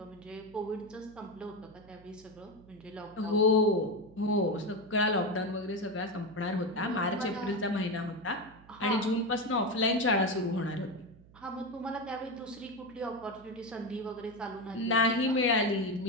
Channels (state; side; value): noise; right; hum, 23 dB below the sound